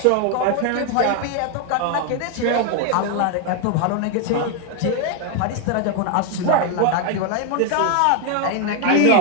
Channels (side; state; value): both; different; correlation 0.01